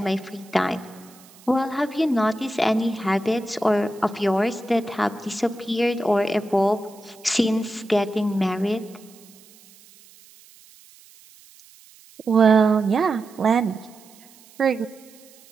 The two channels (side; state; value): right; noise; hiss, 25 dB below the sound